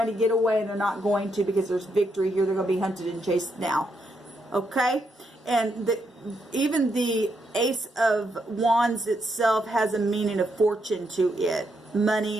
to get away and they're not going to, because there's victory here. They're going to be hunted and chased now. Okay? And even the Ace of Wands itself has a meaning of fortune to it.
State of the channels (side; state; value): both; normal; correlation 0.79